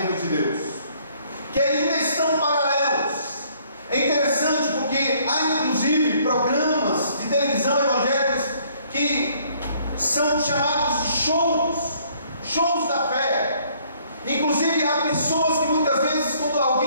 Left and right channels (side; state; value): both; inverted; correlation -0.63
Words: de Deus, que ainda estão paralelos. É interessante porque há inclusive programas de televisão evangélicos que são chamados de shows da fé. Inclusive há pessoas que muitas vezes, quando